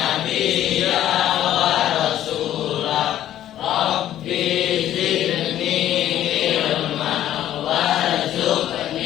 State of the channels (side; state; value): right; quieter; 12.1 dB